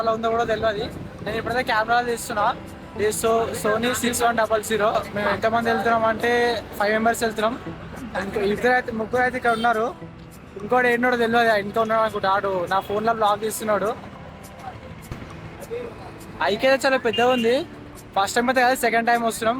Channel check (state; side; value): identical; both; correlation 1.00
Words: ఉందో కూడా తెలియదు. నేను ఇప్పుడైతే కెమెరాలో తీస్తున్నా. ఇది సోనీ 6100. మేము ఎంతమంది వెళ్తున్నాం అంటే 5 మెంబర్స్ వెళ్తున్నాం. ముగ్గురు అయితే ఇక్కడ ఉన్నారు. ఇంకోటి ఏంటో తెలియదు, ఇంకా ఉన్నాడు అనుకుంటా. ఆడు నా ఫోన్లో బ్లాగ్ తీస్తున్నాడు. ఐకే చాలా పెద్దగా ఉంది. ఫస్ట్ టైం అయితే కాదు, సెకండ్ టైం వస్తున్నాం.